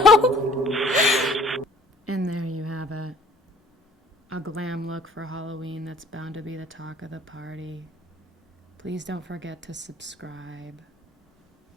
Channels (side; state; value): both; normal; correlation 0.54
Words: And there you have it. A glam look for Halloween that's bound to be the talk of the party. Please don't forget to subscribe.